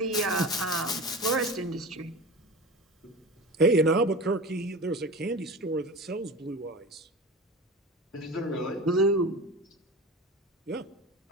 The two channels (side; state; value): both; normal; correlation 0.31